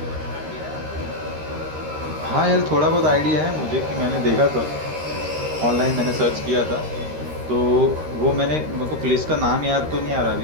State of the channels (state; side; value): late; left; 13 ms